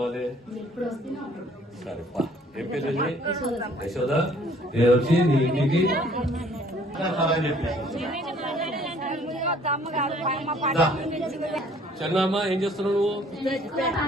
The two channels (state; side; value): normal; both; correlation 0.58